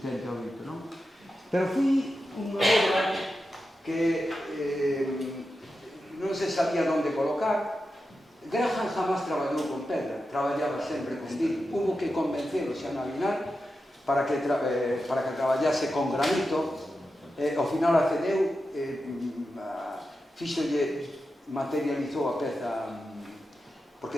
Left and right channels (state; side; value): normal; both; correlation 0.90